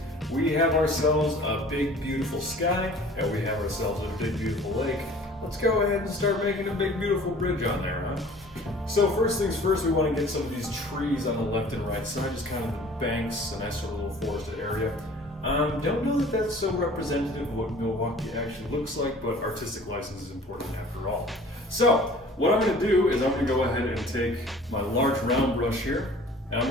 We have ourselves a big beautiful sky and we have ourselves a big beautiful lake. Let's go ahead and start making a big beautiful bridge on there, huh? So first things first, we want to get some of these trees on the left and right side, just kind of the banks, a nice sort of little forested area. Don't know that that's so representative of what Milwaukee actually looks like, but artistic license is important after all. So what I'm going to do is I'm going to go ahead and take my large round brush here, and I'm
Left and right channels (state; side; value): normal; both; correlation 0.48